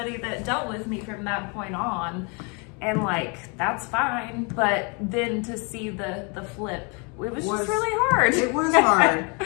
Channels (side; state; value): right; quieter; 33.2 dB